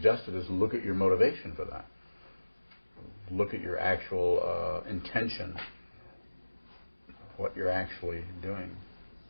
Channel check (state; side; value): inverted; both; correlation -1.00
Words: is look at your motivation for that. Look at your actual intention, what you're actually doing.